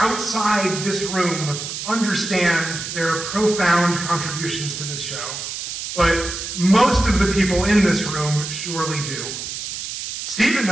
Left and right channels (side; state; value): right; noise; hiss, 6 dB below the sound